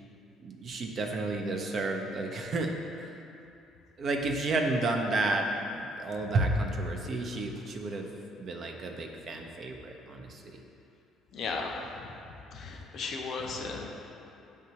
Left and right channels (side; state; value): both; normal; correlation 0.67